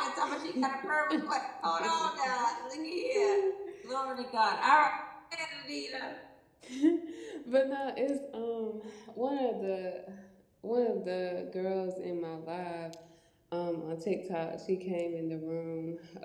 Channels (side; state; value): both; identical; correlation 1.00